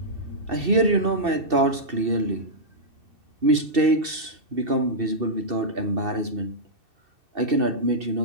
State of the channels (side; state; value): left; late; 2.7 ms